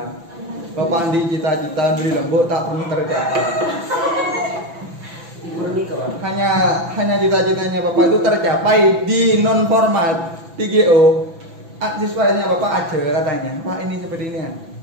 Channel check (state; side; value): late; left; 6.0 ms